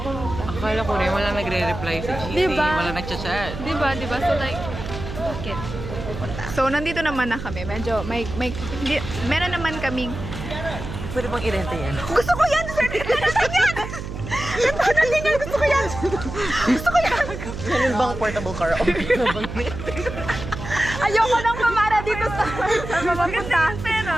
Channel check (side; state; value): right; noise; hum, 8 dB below the sound